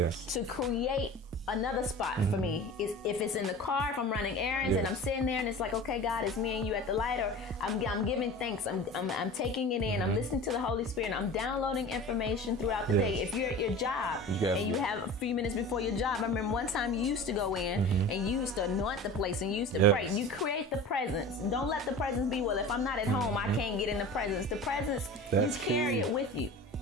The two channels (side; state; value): both; normal; correlation 0.36